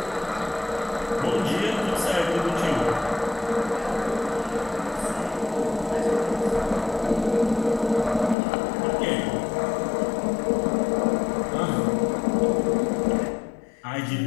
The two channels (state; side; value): drops out; right; at 8.3 s